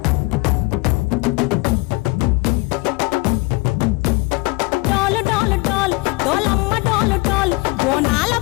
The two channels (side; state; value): right; quieter; 24.8 dB